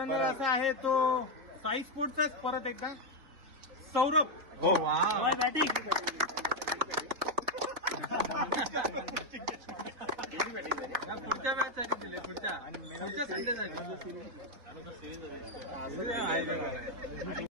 असा आहे तो साई स्पोर्टचाच परत एकदा सौरभ. हो वा पुढच्या मॅच साठी दिले पुढच्या संडेसाठी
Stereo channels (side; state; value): left; late; 3.7 ms